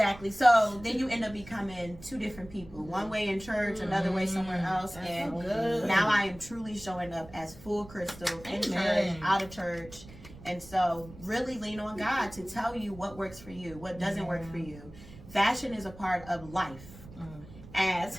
So then you end up becoming two different people. One way in church, another way somewhere else. That's And so good. now I am truly showing up as full Crystal in Amen. church, out of church. And so really lean on God to tell you what works for you, what doesn't work for you. Fashion is a part of life.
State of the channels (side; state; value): right; noise; rumble, 18 dB below the sound